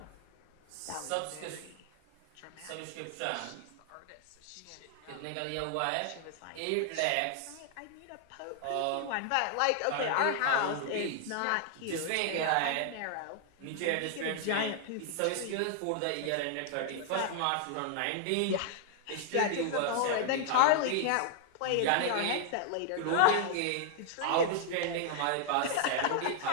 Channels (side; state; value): both; different; correlation 0.00